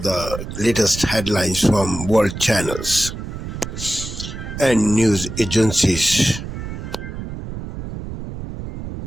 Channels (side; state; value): right; noise; rumble, 8 dB below the sound